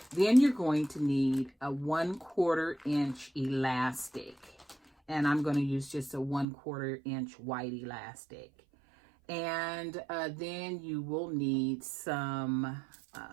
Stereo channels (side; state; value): left; drops out; at 6.5 s